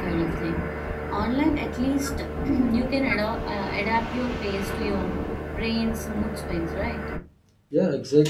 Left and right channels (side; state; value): both; identical; correlation 1.00